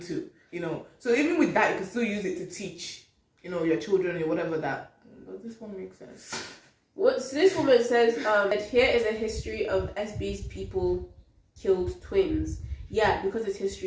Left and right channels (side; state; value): both; identical; correlation 1.00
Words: to, So even with that, you can still use it to teach, your children or whatever that. Does this one make sense? So this woman says that here is a history of SB's people killed twins. Yeah, because it's